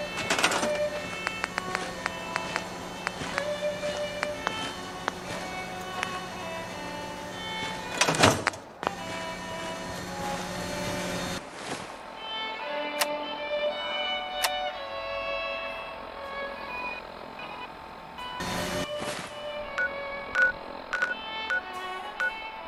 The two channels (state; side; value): identical; both; correlation 1.00